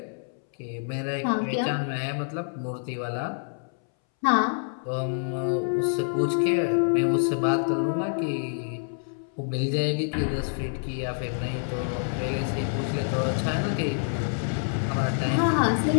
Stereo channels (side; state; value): right; silent; 60 dB below the other